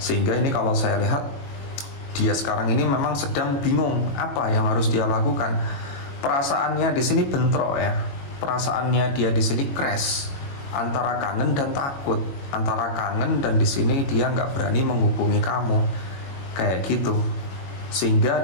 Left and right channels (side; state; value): right; late; 22 ms